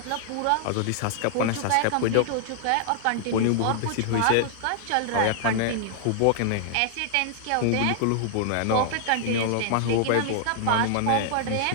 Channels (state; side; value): different; both; correlation -0.01